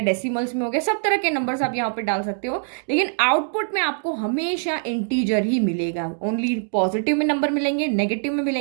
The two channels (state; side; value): silent; left; digital silence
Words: में हो गया, सब तरह के नंबर्स आप यहाँ पे डाल सकते हो। लेकिन आउटपुट में आपको हमेशा इंटीजर ही मिलेगा। ओनली पॉजिटिव में नंबर मिलेंगे, नेगेटिव में